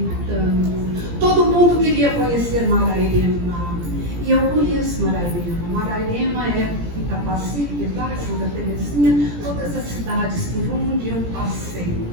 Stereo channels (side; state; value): left; late; 17 ms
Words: Todo mundo queria conhecer Marairema, e eu conheço Marairema. Marairema é Itapaci, Pilar, Santa Terezinha, todas as cidades por onde eu passei.